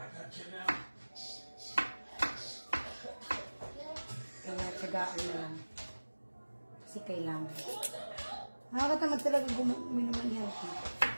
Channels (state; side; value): inverted; both; correlation -1.00